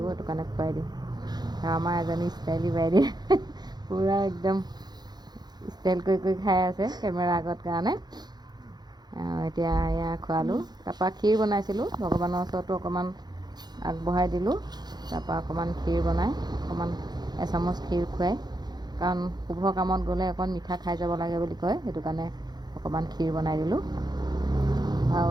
সেইটো কাৰণে খুৱাই দিওঁ। আৰু আমাৰ এজনী ষ্টাইলী বাইদেউ পূৰা একদম ষ্টাইল কৰি কৰি খাই আছে কেমেৰা আগত কাৰণে। এতিয়া এয়া খোৱালোঁ। তাৰপৰা ক্ষীৰ বনাইছিলোঁ, ভগৱানৰ ওচৰতো অকণমান আগবঢ়াই দিলোঁ। তাৰপৰা অকণমান ক্ষীৰ বনাই অকণমান এচামুচ ক্ষীৰ খুৱাই, কাৰণ শুভ কামত গ'লে অকণ মিঠা খাই যাব লাগে বুলি কয়, সেইটো কাৰণে অকণমান ক্ষীৰ বনাই দিলোঁ। আৰু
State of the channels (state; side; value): late; left; 0.20 ms